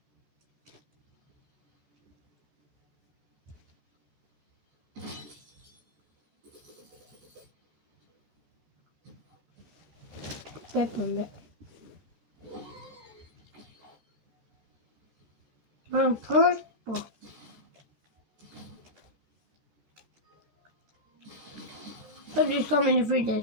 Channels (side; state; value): left; late; 14 ms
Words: Peppunde. I'm purple. But it's coming in the